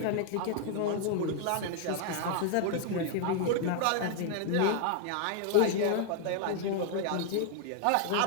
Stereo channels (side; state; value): both; different; correlation 0.00